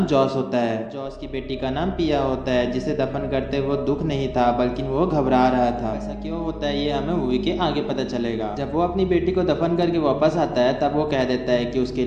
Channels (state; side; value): identical; both; correlation 1.00